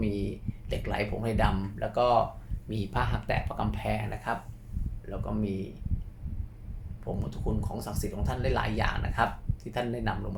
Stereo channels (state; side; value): identical; both; correlation 1.00